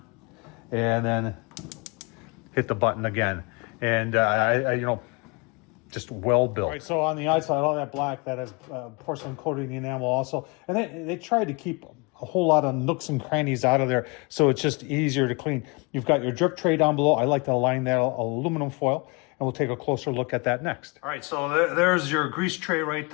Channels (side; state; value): right; quieter; 30.1 dB